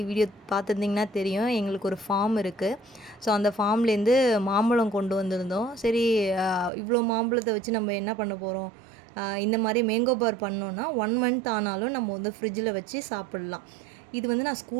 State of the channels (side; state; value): left; drops out; at 6.7 s